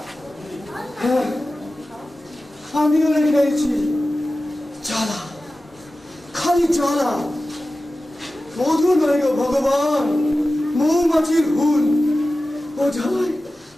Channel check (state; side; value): normal; both; correlation 0.95